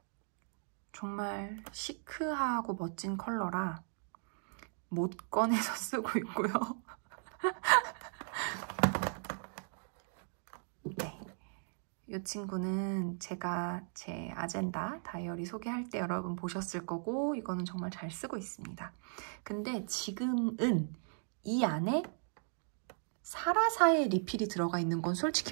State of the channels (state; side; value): silent; left; 53 dB below the other